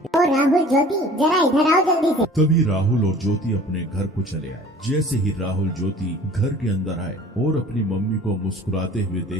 राहुल, ज्योति जरा इधर आओ जल्दी से। तभी राहुल और ज्योति अपने घर को चले आए। जैसे ही राहुल ज्योति घर के अंदर आए और अपनी मम्मी को मुस्कुराते हुए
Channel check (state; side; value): normal; both; correlation 0.47